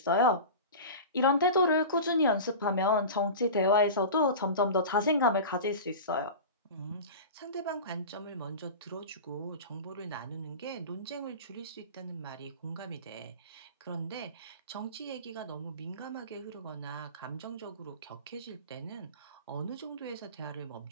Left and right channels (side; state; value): both; inverted; correlation -0.31